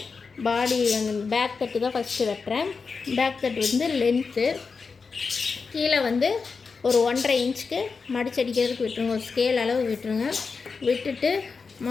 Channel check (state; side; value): quieter; right; 4.9 dB